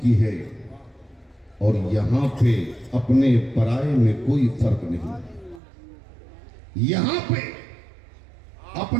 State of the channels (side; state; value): left; drops out; at 5.6 s